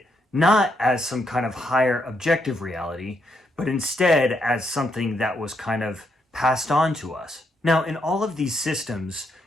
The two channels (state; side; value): normal; both; correlation 0.78